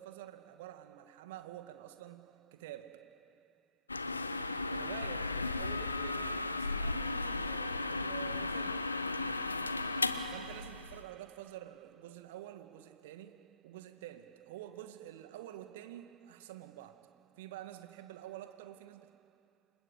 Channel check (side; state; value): both; inverted; correlation -0.79